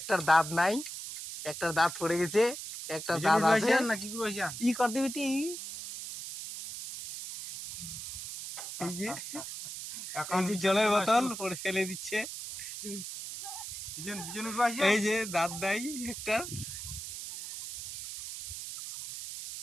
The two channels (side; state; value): right; noise; hiss, 8 dB below the sound